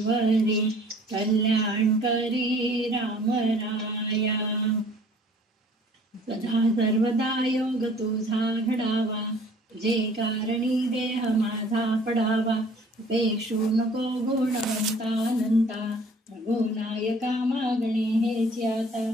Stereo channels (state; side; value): normal; both; correlation 0.53